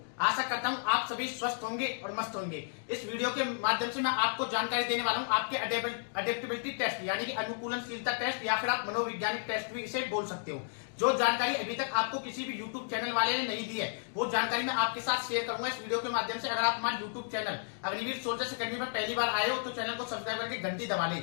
आशा करता हूँ आप सभी स्वस्थ होंगे और मस्त होंगे। इस वीडियो के माध्यम से मैं आपको जानकारी देने वाला हूँ आपके अडेप्टेबिलिटी टेस्ट यानी कि अनुकूलनशीलता टेस्ट या फिर आप मनोवैज्ञानिक टेस्ट भी इसे बोल सकते हो। जो जानकारी अभी तक आपको किसी भी YouTube चैनल वाले ने नहीं दी है वो जानकारी मैं आपके साथ शेयर करूंगा इस वीडियो के माध्यम से। अगर आप हमारे YouTube channel Agniveer soldiers academy में पहली बार आए हो तो चैनल को सब्सक्राइब करके घंटी दबा लें,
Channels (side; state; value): right; silent; digital silence